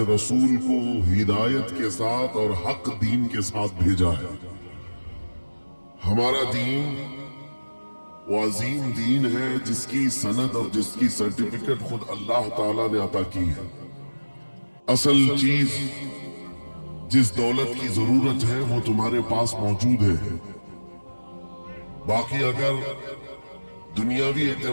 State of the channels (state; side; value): inverted; both; correlation -1.00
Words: رسول کو ہدایت کے ساتھ اور حق دین کے ساتھ بھیجا ہے۔ ہمارا دین وہ عظیم دین ہے جس کی سند اور جس کی سرٹیفکیٹ خود اللہ تعالیٰ نے عطا کی ہے۔ اصل چیز جس دولت کی ضرورت ہے وہ تمہارے پاس موجود ہے، باقی اگر دنیاوی